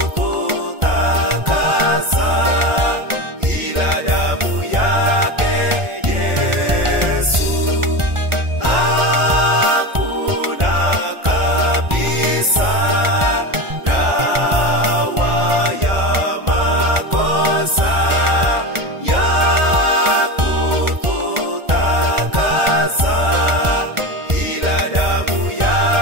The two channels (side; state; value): left; late; 1.4 ms